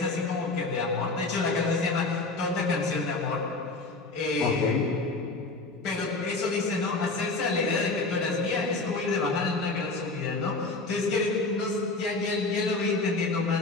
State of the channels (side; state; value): right; quieter; 3.4 dB